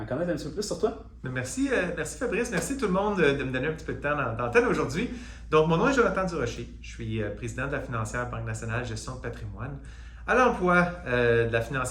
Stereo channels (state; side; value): identical; both; correlation 1.00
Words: connaître un petit peu plus sur toi. Merci, merci Fabrice, merci tout le monde de me donner un petit peu de temps d'antenne aujourd'hui. Donc, mon nom est Jonathan Durocher, je suis président de la financière Banque nationale gestion de patrimoine, à l'emploi de la